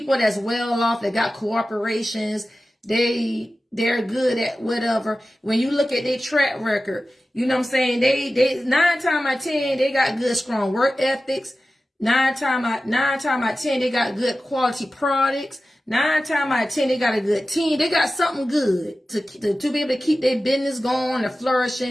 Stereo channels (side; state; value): both; normal; correlation 0.95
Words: that's well off, that got corporations, they're good at whatever. When you look at their track record, you know what I'm saying? They 9 times out of 10, they got good, strong work ethics. 9 times out of 10, they got good quality products. 9 times out of 10, they got a good team. They got something good to be able to keep their business going and